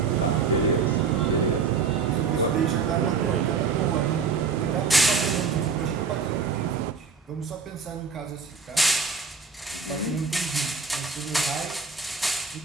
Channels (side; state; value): left; quieter; 5.1 dB